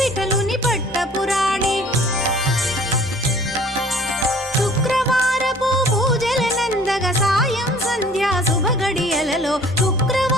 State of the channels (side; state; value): both; normal; correlation 0.52